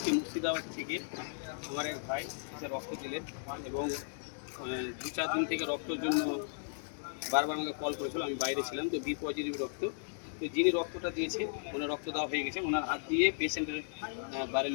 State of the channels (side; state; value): right; silent; digital silence